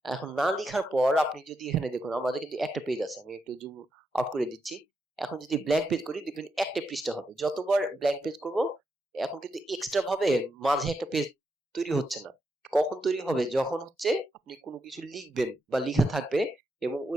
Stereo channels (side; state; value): both; normal; correlation 0.83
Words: এখন না লিখার পর আপনি যদি এখানে দেখুন আমাদের কিন্তু একটা পেজ আছে, আমি একটু জুম আউট করে দিচ্ছি। এখন যদি ব্ল্যাঙ্ক পেজ করি দেখবেন একটা পৃষ্ঠা হবে। যতবার ব্ল্যাঙ্ক পেজ করব এখন কিন্তু এক্সট্রা ভাবে মাঝে একটা পেজ তৈরি হচ্ছে না। কখন তৈরি হবে? যখন হচ্ছে আপনি কোনো কিছু লিখবেন বা লেখা থাকবে এবং